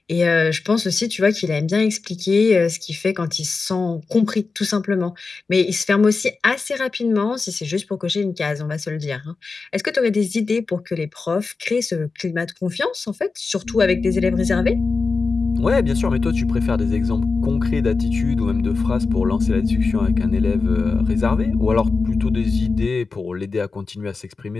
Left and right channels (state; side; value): quieter; right; 4.3 dB